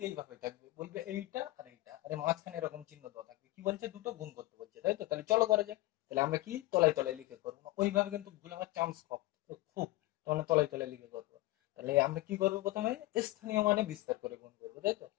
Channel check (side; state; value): right; quieter; 18.8 dB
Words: এইভাবে থাকবে, বলবে এইটা আর এইটা, আরে মাঝখানে এরকম চিহ্ন দেওয়া থাকবে, কি বলছে দুটো গুণ করতে বলছে, তাই তো? তাহলে চলো করা যাক। তাহলে আমরা কি তলায় তলায় লিখে করবো না, ওইভাবে কিন্তু ভুল হওয়ার চান্স খুব, তাহলে তলায় তলায় লিখে করবো। তাহলে আমরা কি করবো, প্রথমে স্থানীয় মানে বিস্তার করে গুণ করবো, তাই তো?